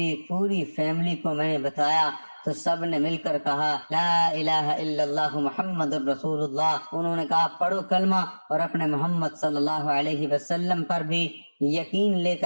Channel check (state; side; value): inverted; both; correlation -1.00